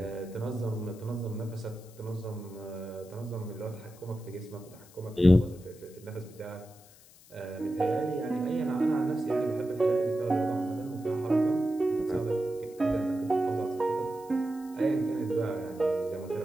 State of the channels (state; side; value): noise; left; hiss, 24 dB below the sound